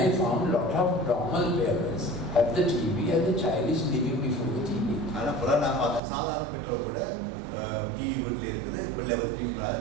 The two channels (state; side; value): drops out; left; at 6.0 s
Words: found a lot of normal parents have the TV and the child is living before the TV.